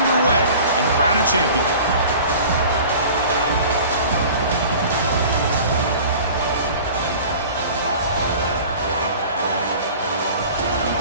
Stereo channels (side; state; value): both; inverted; correlation -0.42